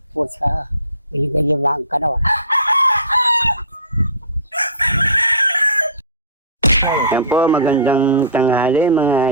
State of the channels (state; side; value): inverted; both; correlation -0.36